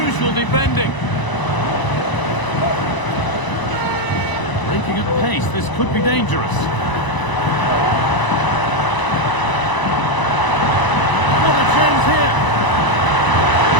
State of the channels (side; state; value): right; late; 1.0 ms